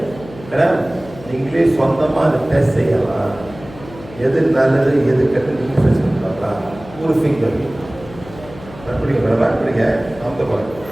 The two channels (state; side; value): noise; left; hum, 18 dB below the sound